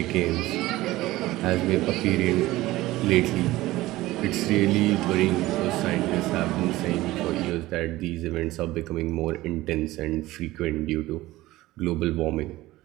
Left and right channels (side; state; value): left; quieter; 17.6 dB